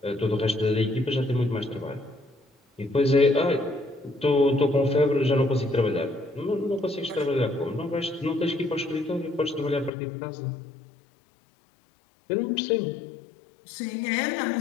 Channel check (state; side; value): drops out; right; at 9.9 s